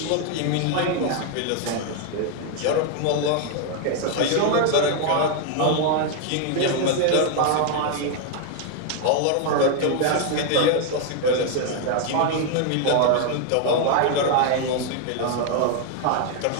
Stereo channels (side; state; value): both; different; correlation 0.00